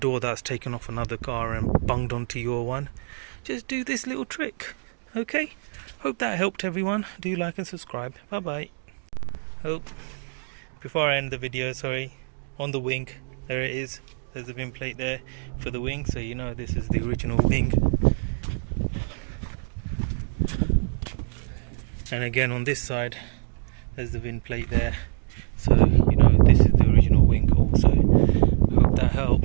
that's taken off another car and bunged onto your one. Just do this little trick. Okay, hope that helped everyone. Do like and subscribe. Bye bye. Before I end the video, on the wing, there it is, there's a VIN plate there for the wing, so you know this is the original wing. And again on this side, there's the VIN plate there, so you know this is the original wing also. Hope that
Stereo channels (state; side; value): silent; left; digital silence